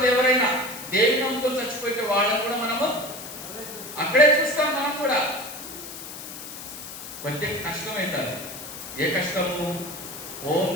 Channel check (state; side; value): noise; left; hiss, 11 dB below the sound